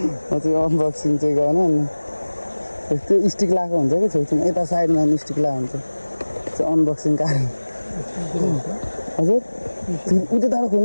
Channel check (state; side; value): inverted; both; correlation -1.00